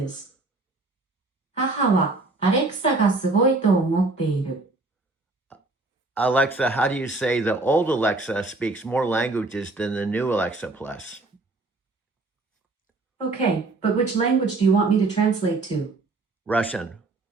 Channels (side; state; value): left; quieter; 3.3 dB